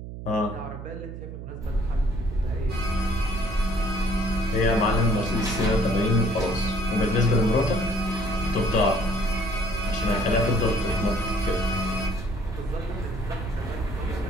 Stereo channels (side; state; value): right; noise; hum, 10 dB below the sound